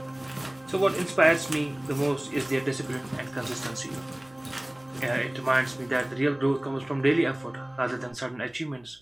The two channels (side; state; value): right; noise; hum, 30 dB below the sound